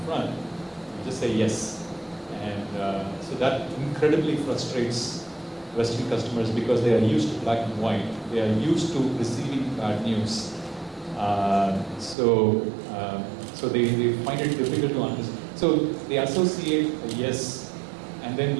you just say yes. And so that incredibly frustrates Western customers because they are used to black and white. They are used to receiving bad news. So they find it difficult to understand. So they associate a yes and then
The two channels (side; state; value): left; drops out; at 12.2 s